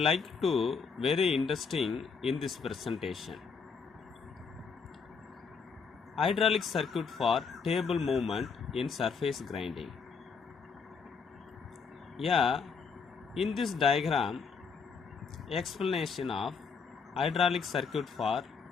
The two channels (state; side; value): quieter; right; 5.5 dB